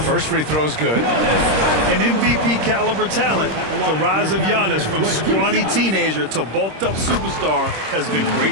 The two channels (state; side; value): late; left; 26 ms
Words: first free throw is good. An MVP caliber talent. The rise of Giannis from scrawny teenager to bulked up superstar has been